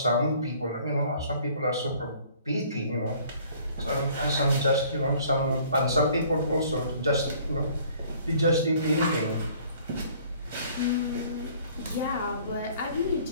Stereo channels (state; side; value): inverted; both; correlation -0.56